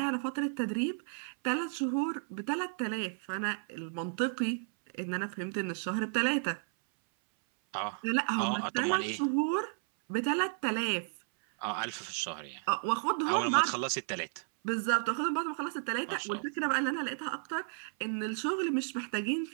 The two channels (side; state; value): left; silent; 56 dB below the other